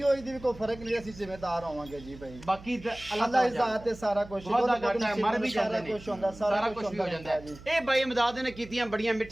ਹੋਈ ਦੀ ਵੀ ਕੋਈ ਫਰਕ ਨਹੀਂ, ਅਸੀਂ ਜ਼ਿੰਮੇਦਾਰ ਹੋਵਾਂਗੇ ਜੀ ਭਾਈ। ਬਾਕੀ ਤਾਂ ਅੱਲਾ ਇਜ਼ਾਤ ਤੇ ਸਾਰਾ ਕੁਝ ਵਾਦਾ ਘਾਟਾ ਹੈ, ਮਰ ਵੀ ਜਾਂਦੇ ਨੇ, ਕੁਝ ਹੁੰਦਾ, ਸਾਰਾ ਕੁਝ ਵੀ ਹੋ ਜਾਂਦਾ ਹੈ। ਇਹ ਬਾਈ ਇਮਦਾਦ ਨੇ ਕੀਤੀਆਂ ਬੜੀਆਂ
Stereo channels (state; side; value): noise; right; hum, 18 dB below the sound